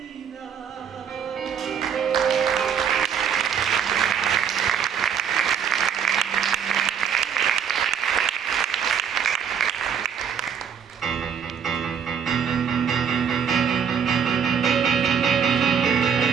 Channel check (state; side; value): quieter; left; 7.6 dB